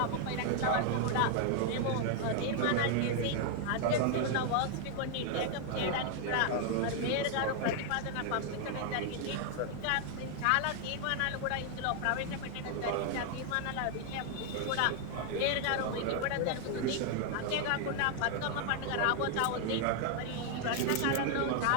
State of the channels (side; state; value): both; different; correlation 0.00